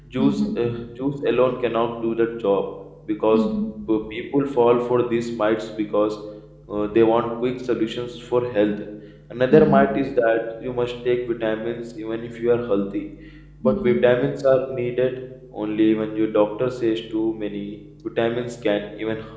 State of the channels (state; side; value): identical; both; correlation 1.00